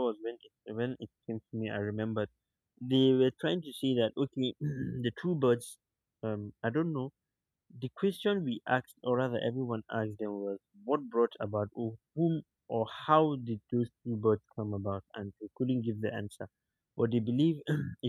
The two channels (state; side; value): identical; both; correlation 1.00